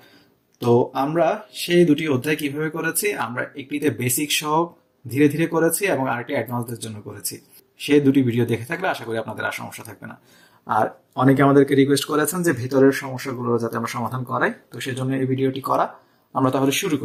তো আমরা সেই দুটি অধ্যায় কিভাবে করেছি, আমরা একটিতে বেসিক সহ ধীরে ধীরে করেছি এবং আরেকটি অ্যাডভান্সদের জন্য করেছি। সেই দুটি ভিডিও দেখে থাকলে আশা করি আপনাদের আর সমস্যা থাকবে না। আর অনেকে আমাদেরকে রিকোয়েস্ট করেছেন যে ভেতরের সমস্যাগুলো যাতে আমরা সমাধান করাই, তো সেজন্য এই ভিডিওটি করা। আমরা তাহলে শুরু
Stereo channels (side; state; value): both; identical; correlation 1.00